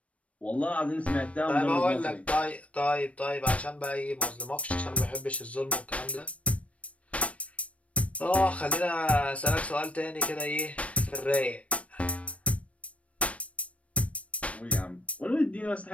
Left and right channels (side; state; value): right; late; 0.064 ms